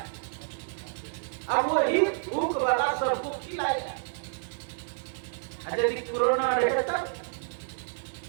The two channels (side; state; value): left; silent; 58 dB below the other